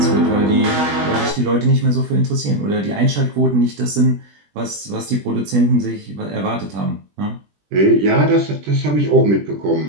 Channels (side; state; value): left; late; 20 ms